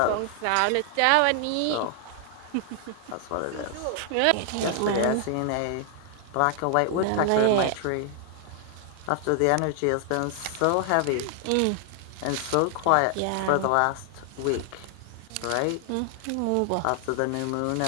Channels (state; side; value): different; both; correlation 0.00